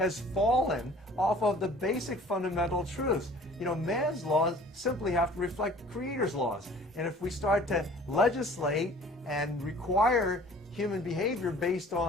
fallen off of the basic fundamental truths. You know, man's laws simply have to reflect the Creator's laws. And if we start to legislate and require human behavior based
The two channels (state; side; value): normal; both; correlation 0.49